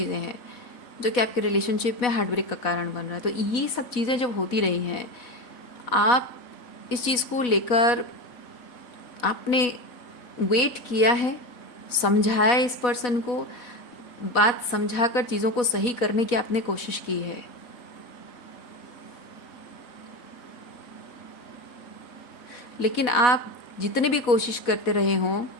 हैं जो कि आपके रिलेशनशिप में हार्ट ब्रेक का कारण बन रहा है। तो ये सब चीज़ें जब होती रही हैं, आप इस चीज़ को लेकर आपने वेट किया है, समझाया इस पर्सन को, बात समझाकर चीज़ों को सही करने की आपने कोशिश की है। लेकिन आप जितने भी कोशिश करते रहे हों,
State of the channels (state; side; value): late; right; 4.1 ms